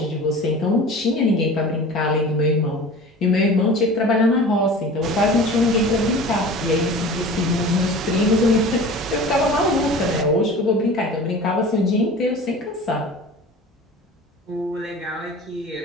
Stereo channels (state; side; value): normal; both; correlation 0.38